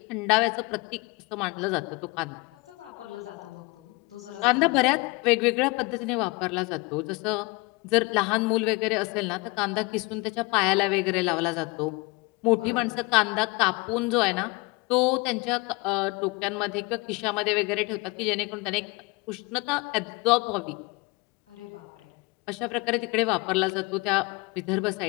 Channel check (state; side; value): quieter; right; 26.0 dB